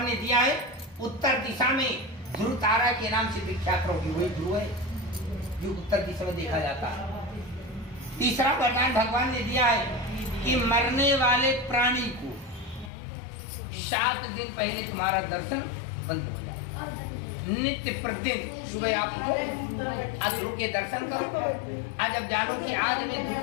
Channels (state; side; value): drops out; right; at 12.9 s